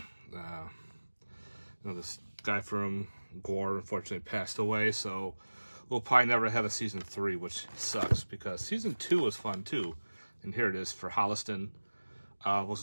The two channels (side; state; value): both; inverted; correlation -1.00